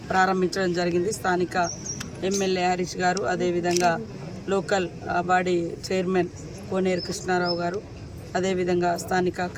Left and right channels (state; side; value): identical; both; correlation 1.00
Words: ప్రారంభించడం జరిగింది. స్థానిక ఎమ్మెల్యే హరీష్ గారు, అదేవిధంగా లోకల్ బాడీ చైర్మన్ కోనేరు కృష్ణారావు గారు, అదేవిధంగా స్థానిక